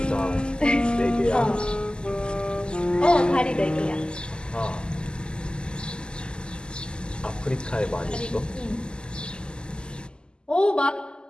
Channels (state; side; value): late; right; 0.048 ms